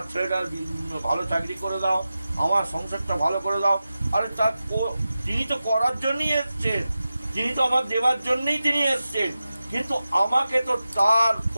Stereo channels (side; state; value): both; inverted; correlation -0.93